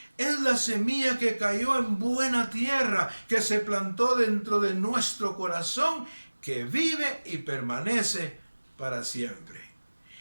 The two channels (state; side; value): inverted; both; correlation -1.00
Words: Es la semilla que cayó en buena tierra, que se plantó dentro de nuestro corazón, que vive y permanece para siempre.